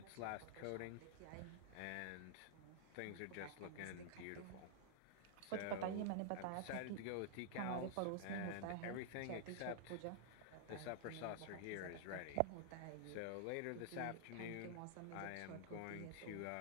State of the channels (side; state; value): both; different; correlation -0.01